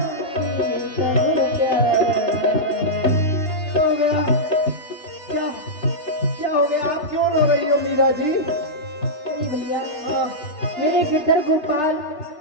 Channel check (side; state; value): right; late; 3.3 ms